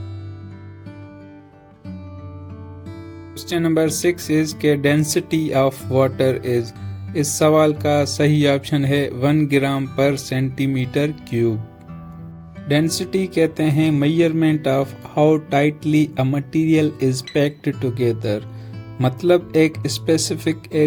क्वेश्चन नंबर 6 इज के डेंसिटी ऑफ वाटर इज। इस सवाल का सही ऑप्शन है 1 ग्राम पर सेंटीमीटर क्यूब। डेंसिटी कहते हैं measurement of how tightly a material is packed together. मतलब एक स्पेसिफिक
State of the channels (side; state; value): both; identical; correlation 1.00